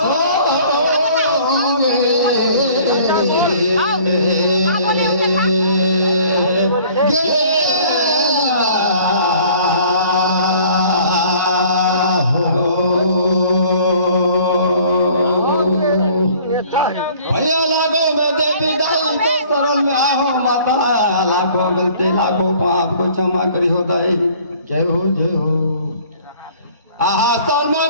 लाखों गलती लाखों पाप को क्षमा करी होता है। जय हो आहा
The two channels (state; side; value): inverted; both; correlation -0.53